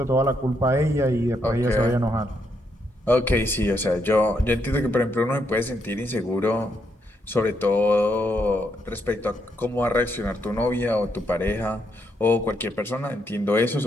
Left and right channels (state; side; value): normal; both; correlation 0.77